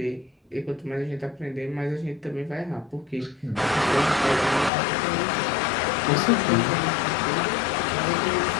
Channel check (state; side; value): drops out; right; at 4.7 s